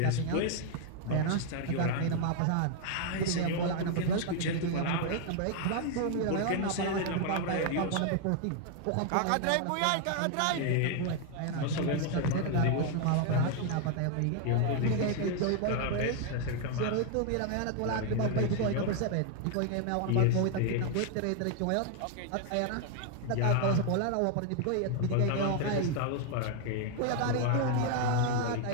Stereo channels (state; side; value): different; both; correlation 0.00